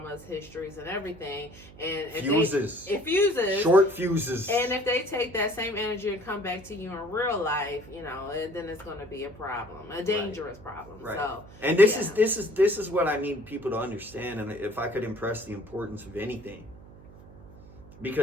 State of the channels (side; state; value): right; noise; hum, 20 dB below the sound